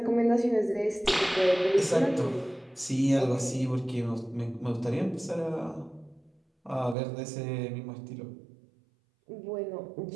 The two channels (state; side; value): drops out; left; at 7.0 s